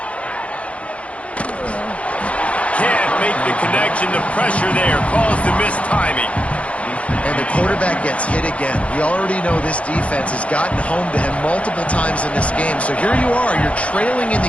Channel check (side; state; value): right; late; 0.063 ms